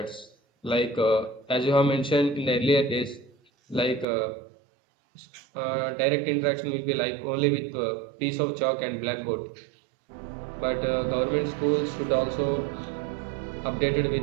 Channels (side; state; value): left; drops out; at 4.0 s